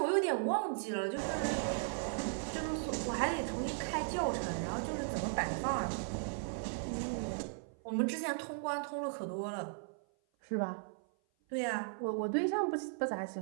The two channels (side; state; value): left; silent; 53 dB below the other